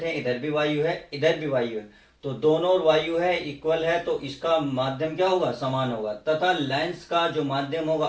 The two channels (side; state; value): both; identical; correlation 1.00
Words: हैं इधर भी वायु है इधर भी वायु है, तो दोनों ओर वायु है, इक्वल है, तो इसका माध्यम क्या होगा, समान होगा। तथा लेंस का जो माध्यम होगा